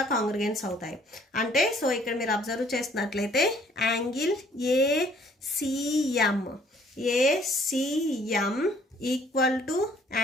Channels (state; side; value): normal; both; correlation 0.60